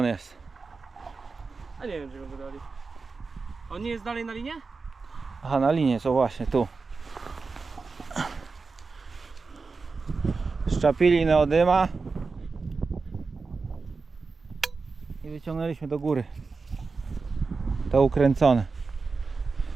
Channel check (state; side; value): quieter; left; 4.4 dB